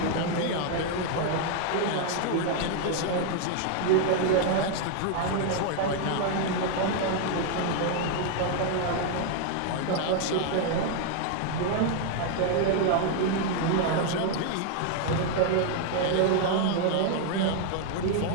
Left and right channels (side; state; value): both; different; correlation 0.00